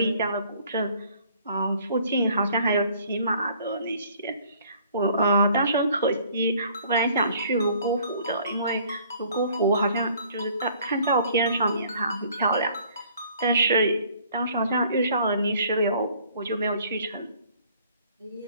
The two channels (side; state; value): both; inverted; correlation -0.58